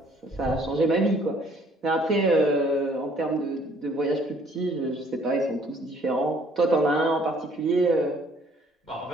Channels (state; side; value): normal; both; correlation 0.60